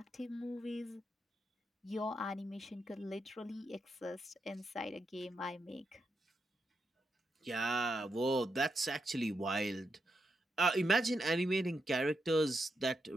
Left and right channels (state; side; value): normal; both; correlation 0.84